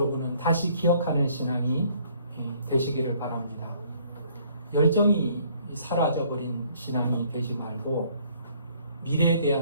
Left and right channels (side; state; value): both; inverted; correlation -0.61